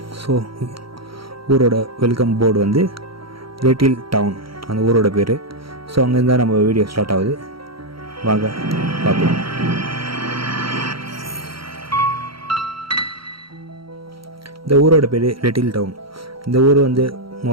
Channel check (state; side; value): late; left; 0.74 ms